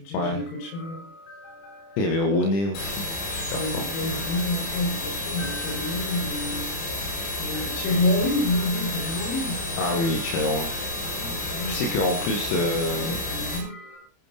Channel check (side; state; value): right; late; 30 ms